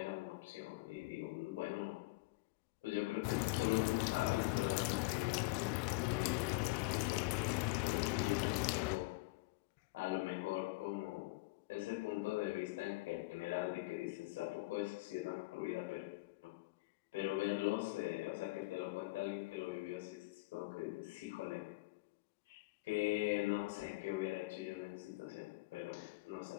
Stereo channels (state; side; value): quieter; right; 22.9 dB